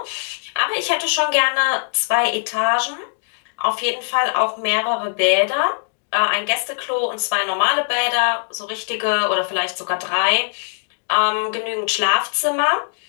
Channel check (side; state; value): right; silent; digital silence